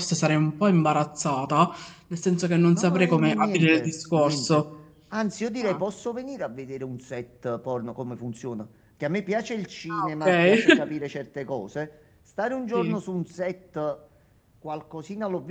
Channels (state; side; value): identical; both; correlation 1.00